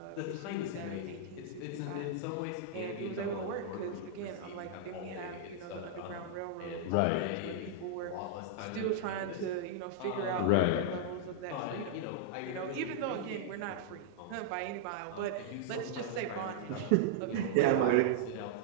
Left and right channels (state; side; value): different; both; correlation -0.02